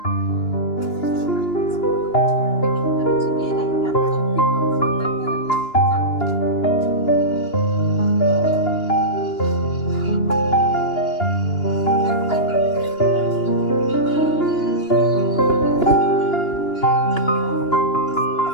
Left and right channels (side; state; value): right; late; 2.9 ms